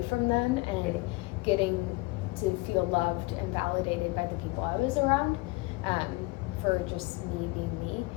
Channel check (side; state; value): right; quieter; 23.4 dB